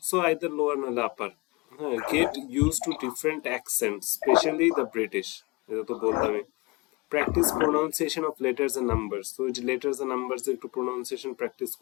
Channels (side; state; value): right; quieter; 25.0 dB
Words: So either lower নাহলে আপার। হ্যাঁ, get use to different accent, specially the British. এটা তো বললামই। Practice pronunciation of letters and numbers. তো যে লেটার্স এন্ড নাম্বারস একটু প্রোনাউন্সিয়েশন প্র্যাকটিস